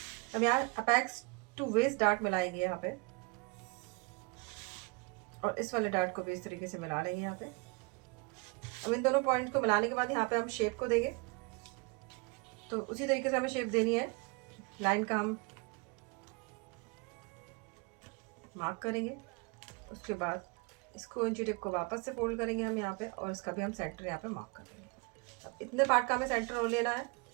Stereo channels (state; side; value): quieter; left; 29.8 dB